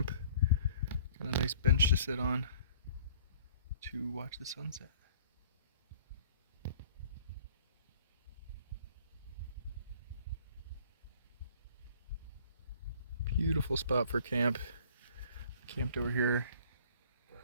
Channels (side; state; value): both; inverted; correlation -0.53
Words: Got a nice bench to sit on to watch the sunset. Beautiful spot for camp. Camped over here